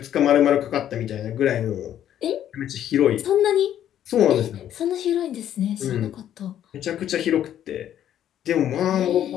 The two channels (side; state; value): right; quieter; 10.9 dB